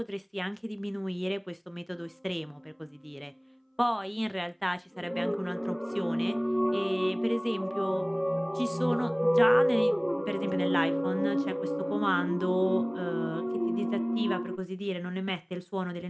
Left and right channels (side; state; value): both; identical; correlation 1.00